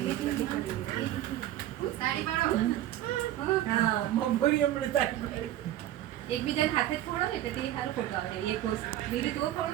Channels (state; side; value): quieter; left; 13.1 dB